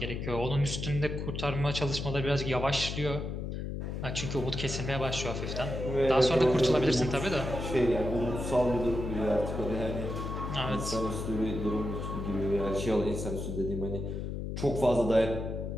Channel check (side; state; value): left; noise; hum, 4 dB below the sound